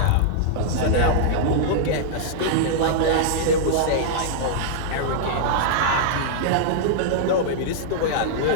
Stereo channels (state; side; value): different; both; correlation -0.01